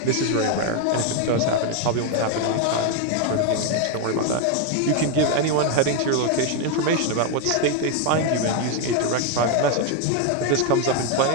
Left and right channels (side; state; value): both; different; correlation 0.01